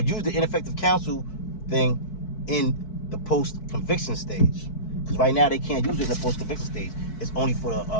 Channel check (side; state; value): right; late; 4.6 ms